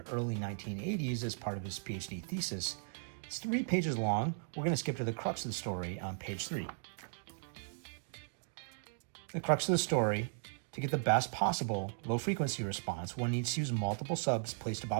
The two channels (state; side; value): silent; left; digital silence